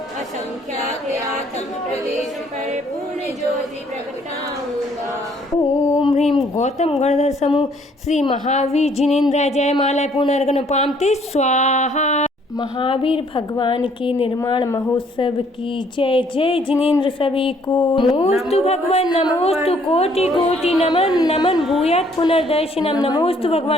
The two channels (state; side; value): normal; both; correlation 0.63